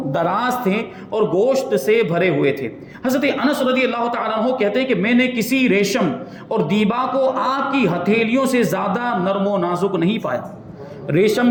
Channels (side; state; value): both; identical; correlation 1.00